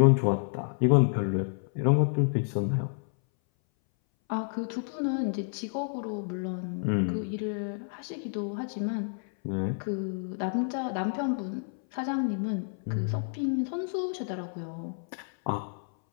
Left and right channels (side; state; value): right; silent; 58 dB below the other